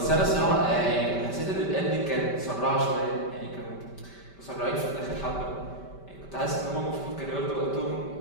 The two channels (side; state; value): right; late; 5.1 ms